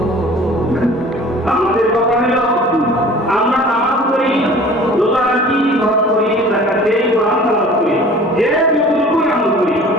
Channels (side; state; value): both; normal; correlation 0.46